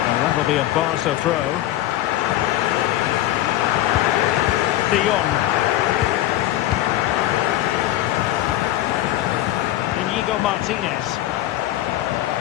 And that'll be a Barca throw. De Jong. Íñigo Martínez.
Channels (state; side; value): quieter; right; 14.4 dB